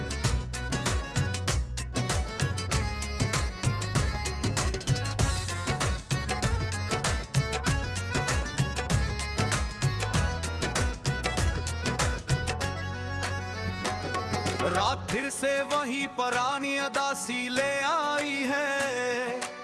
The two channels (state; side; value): identical; both; correlation 1.00